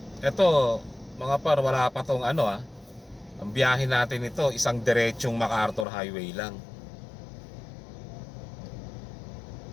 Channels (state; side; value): drops out; right; at 5.9 s